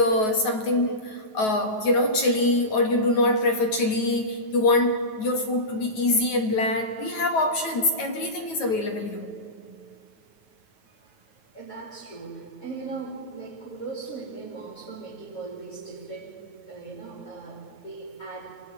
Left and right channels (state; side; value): late; right; 9.3 ms